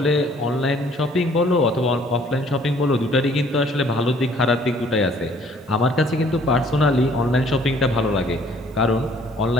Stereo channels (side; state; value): both; normal; correlation 0.58